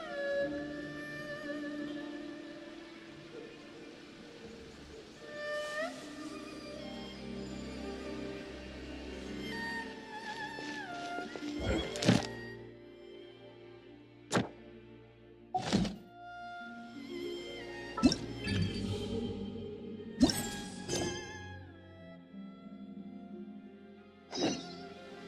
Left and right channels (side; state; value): both; identical; correlation 1.00